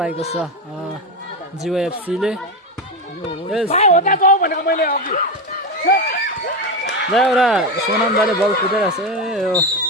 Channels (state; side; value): normal; both; correlation 0.15